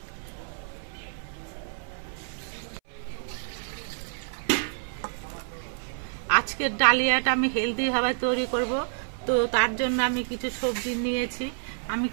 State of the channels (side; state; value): left; silent; 59 dB below the other